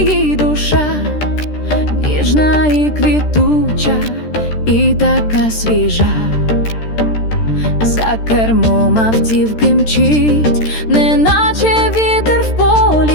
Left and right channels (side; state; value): right; late; 13 ms